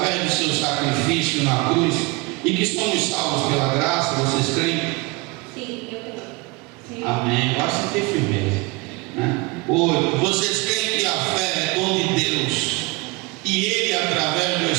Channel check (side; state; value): left; quieter; 25.7 dB